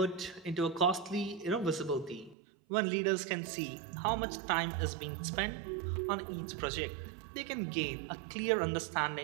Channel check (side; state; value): left; drops out; at 2.4 s